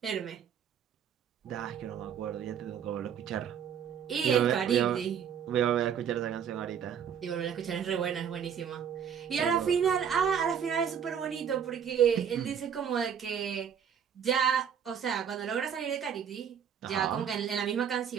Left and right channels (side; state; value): left; quieter; 8.1 dB